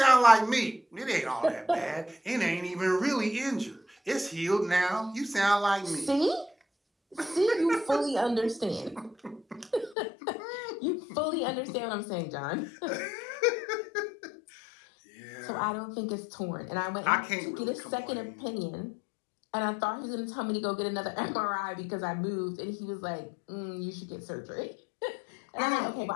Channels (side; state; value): right; drops out; at 10.0 s